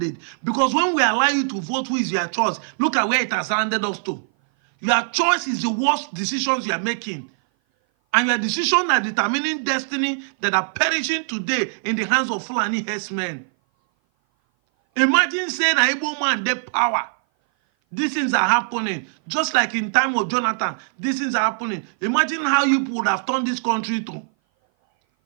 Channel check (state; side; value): silent; left; 57 dB below the other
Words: because when we allow you to vote who is your choice, look at where it has landed us to. Your choice is the worst decisions you are making, and your decisions are determining destiny that are perishing today in the hands of Fulani herdsmen. Imagine saying an Igbo man their power. These things are happening. Just like in time of Jonathan, these things are happening. Imagine how you would have turned this country to.